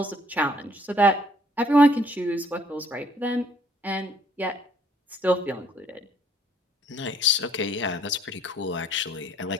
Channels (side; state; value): both; normal; correlation 0.62